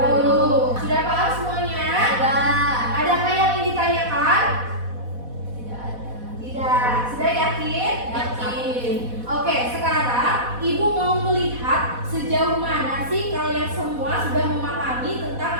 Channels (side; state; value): left; late; 4.1 ms